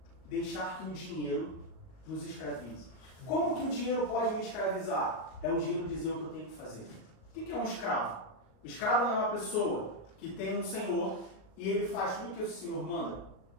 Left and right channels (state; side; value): late; right; 38 ms